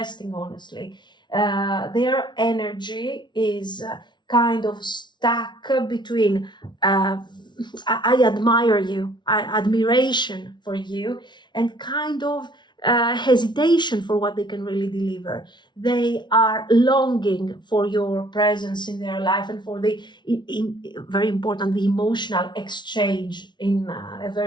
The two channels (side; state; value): right; late; 0.22 ms